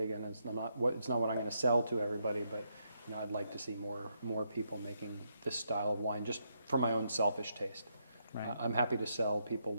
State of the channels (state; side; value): inverted; both; correlation -0.79